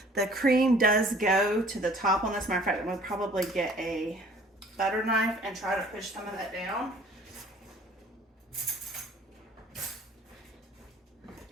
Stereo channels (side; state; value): both; normal; correlation 0.53